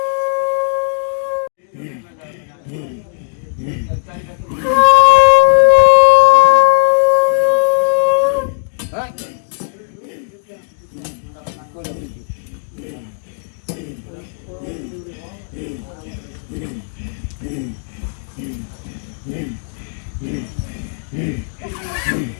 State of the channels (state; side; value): silent; right; 68 dB below the other